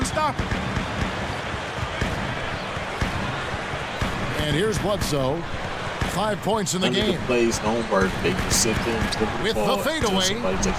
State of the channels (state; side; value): identical; both; correlation 1.00